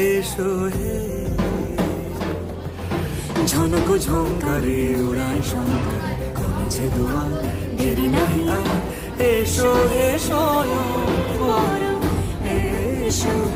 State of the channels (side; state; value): both; identical; correlation 1.00